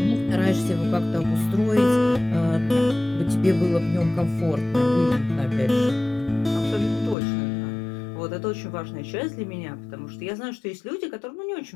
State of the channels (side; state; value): right; drops out; at 7.2 s